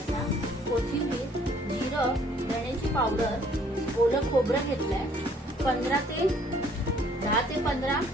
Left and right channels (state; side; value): normal; both; correlation 0.61